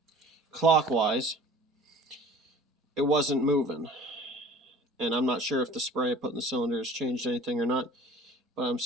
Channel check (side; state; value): both; normal; correlation 0.47